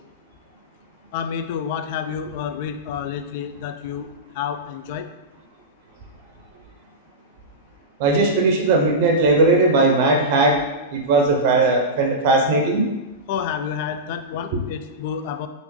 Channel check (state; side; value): normal; both; correlation -0.14